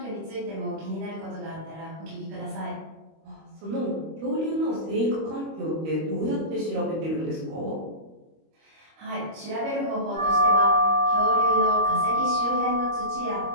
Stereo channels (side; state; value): left; late; 25 ms